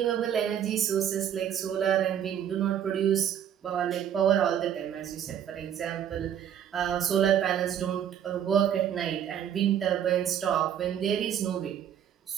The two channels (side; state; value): left; quieter; 9.6 dB